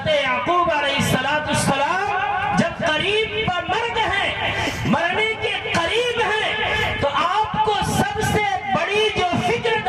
یعقوب علیہ السلام جب قریب پر مر گئے، مرنے کے قریب ہیں، تو آپ کو سب سے بڑی جو فکر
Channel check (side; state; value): both; identical; correlation 1.00